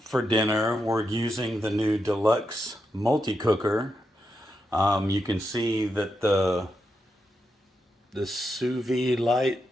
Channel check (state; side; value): normal; both; correlation 0.85